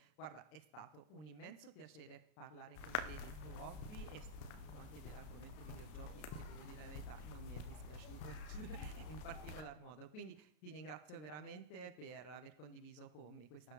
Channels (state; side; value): late; right; 33 ms